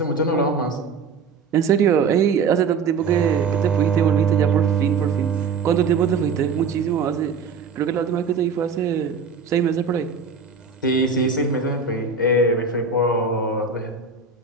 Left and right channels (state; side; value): quieter; left; 5.1 dB